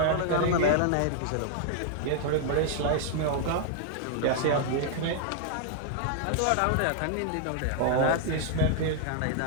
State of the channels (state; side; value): different; both; correlation 0.00